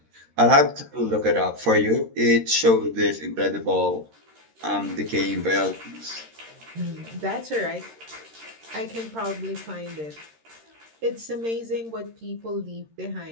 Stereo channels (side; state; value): left; late; 13 ms